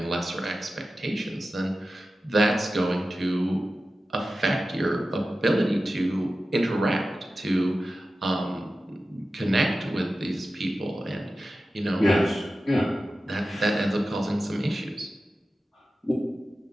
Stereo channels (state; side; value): normal; both; correlation 0.94